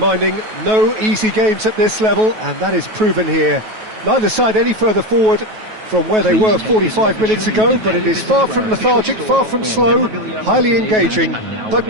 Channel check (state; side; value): late; left; 9.3 ms